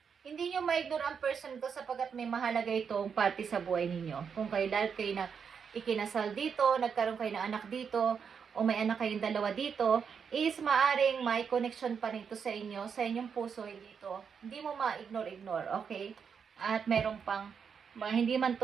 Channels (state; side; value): quieter; left; 6.6 dB